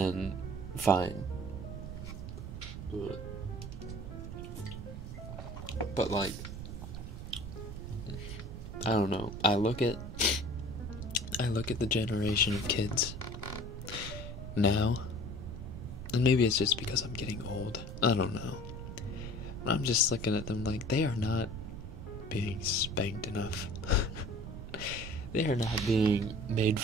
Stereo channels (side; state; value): right; noise; rumble, 8 dB below the sound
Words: fine. But like, I don't know. I look at the generation of kids now, and maybe it's just because I'm getting old. I don't know. But I'm just looking at them like they are not being spanked enough. They are not being made